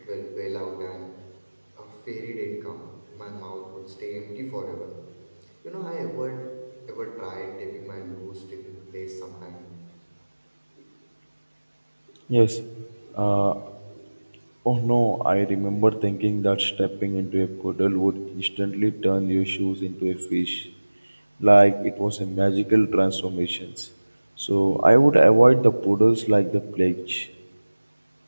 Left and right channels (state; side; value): inverted; both; correlation -1.00